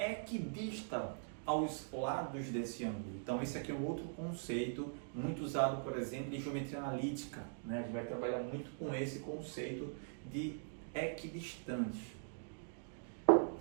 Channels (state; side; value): silent; left; digital silence